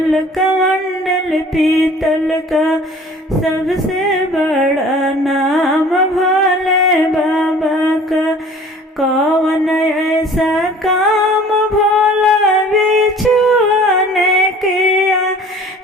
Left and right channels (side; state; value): both; normal; correlation 0.48